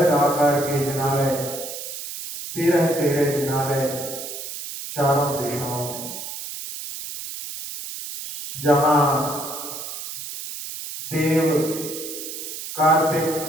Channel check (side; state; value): right; noise; hiss, 8 dB below the sound